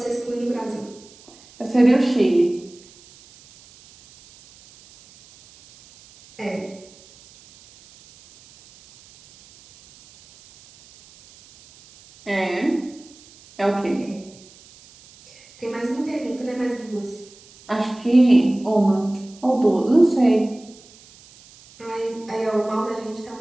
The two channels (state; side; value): noise; right; hiss, 25 dB below the sound